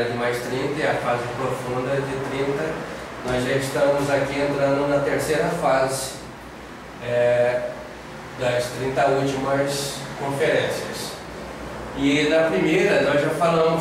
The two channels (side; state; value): both; identical; correlation 1.00